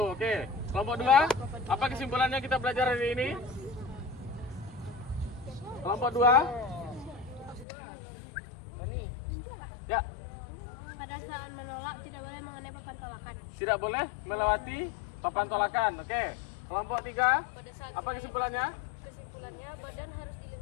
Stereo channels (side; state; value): right; drops out; at 7.7 s